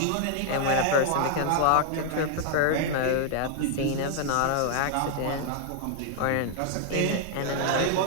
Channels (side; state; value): both; different; correlation 0.00